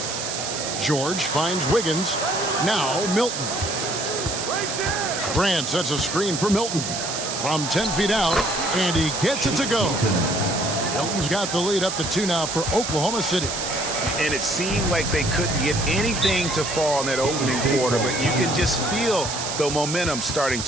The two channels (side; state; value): right; noise; hiss, 4 dB below the sound